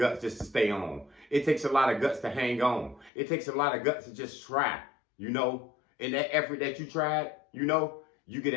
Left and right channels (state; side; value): drops out; right; at 3.1 s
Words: just to stay on. It takes a lot of guts to hang on. It takes a lot of guts to just try, you know. And that effort that you tried, you know, you get